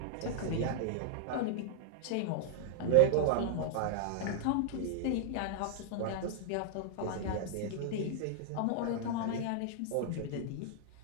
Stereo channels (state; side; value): different; both; correlation -0.01